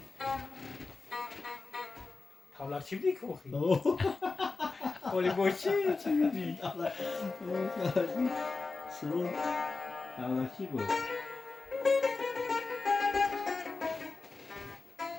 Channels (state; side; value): quieter; right; 4.0 dB